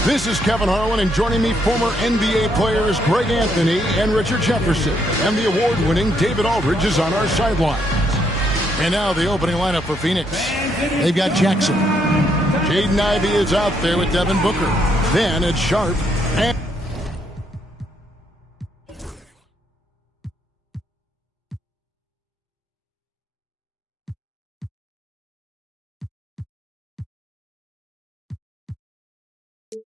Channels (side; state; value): both; normal; correlation 0.73